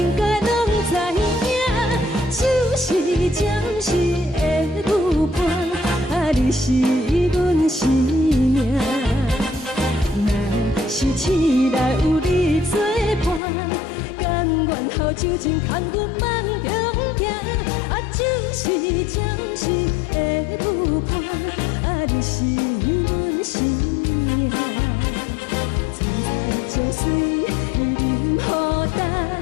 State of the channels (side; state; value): right; drops out; at 13.4 s